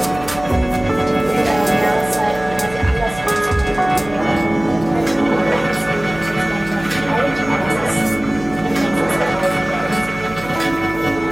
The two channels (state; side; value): noise; right; hum, 16 dB below the sound